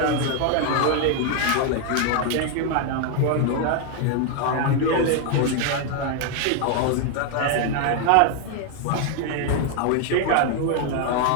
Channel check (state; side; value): different; both; correlation 0.01